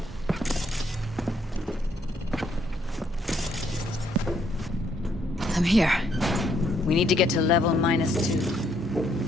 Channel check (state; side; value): normal; both; correlation 0.71